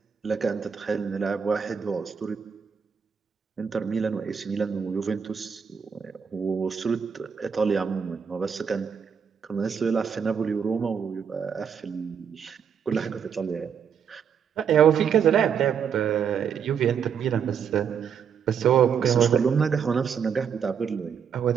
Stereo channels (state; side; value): quieter; left; 7.2 dB